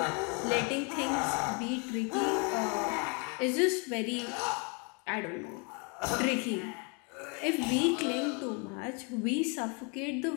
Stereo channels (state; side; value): quieter; right; 34.2 dB